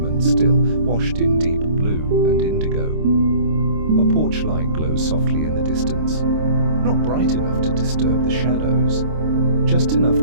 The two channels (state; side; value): late; left; 26 ms